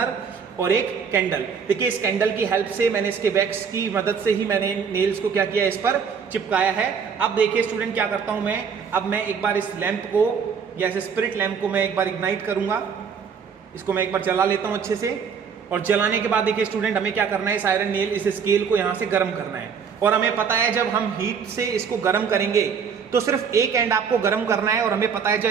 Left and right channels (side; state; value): left; quieter; 6.5 dB